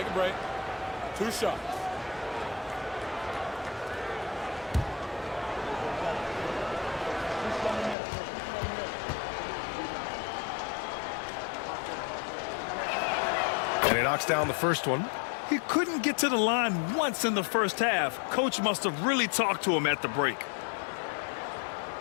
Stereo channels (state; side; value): drops out; right; at 8.0 s